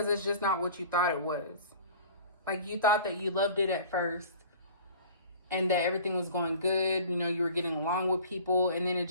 it's just not what you thought it was. Like, you thought that you loved it at first and that everything was going good. You know, you were getting along with people, and then it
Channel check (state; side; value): inverted; both; correlation -0.43